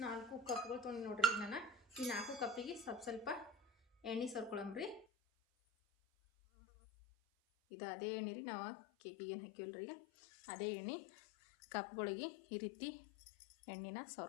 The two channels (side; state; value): right; drops out; at 5.1 s